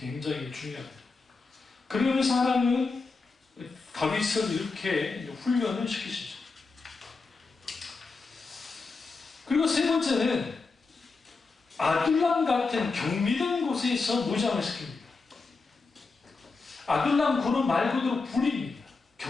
중요합니다. 그러면서 하나님은 다윗을 이렇게 훈련을 시키시죠. 그리고 세 번째는 아둘람 같은 경미된 곳에서 무장을 시킵니다. 아둘람 굴은 말 그대로 굴입니다.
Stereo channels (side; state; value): right; quieter; 4.2 dB